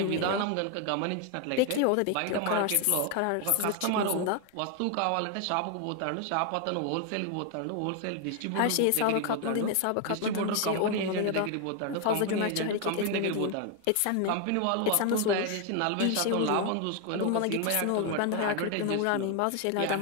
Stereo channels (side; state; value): both; different; correlation 0.01